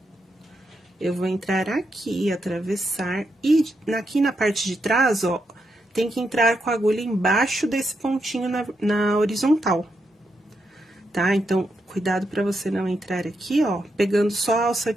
Eu vou entrar aqui, atravessar, e aqui na parte de trás, ó, tem que entrar com a agulha embaixo desse pontinho na horizontal, tá? Então, cuidado pra você não entrar aqui, ó, pegando só a alça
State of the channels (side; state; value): both; normal; correlation 0.83